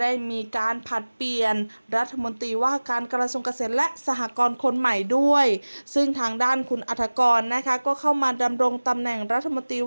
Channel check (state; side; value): inverted; both; correlation -1.00